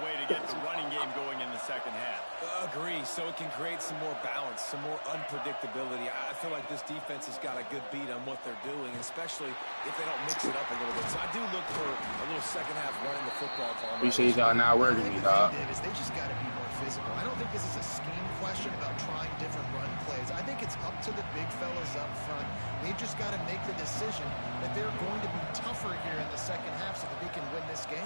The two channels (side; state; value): both; inverted; correlation -1.00